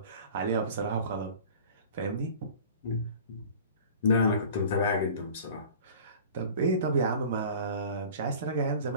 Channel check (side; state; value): both; inverted; correlation -0.42